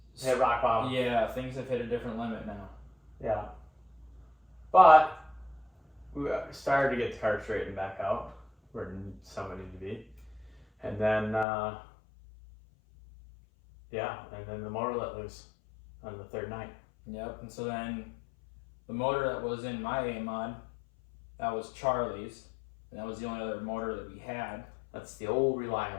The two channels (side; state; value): right; drops out; at 11.5 s